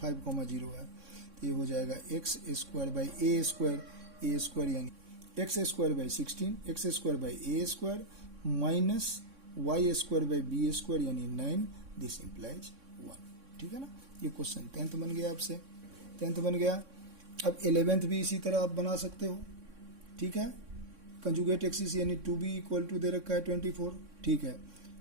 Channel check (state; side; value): late; left; 3.6 ms